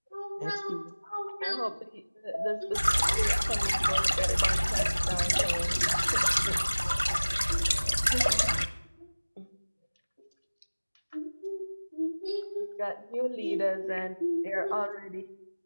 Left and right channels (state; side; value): inverted; both; correlation -1.00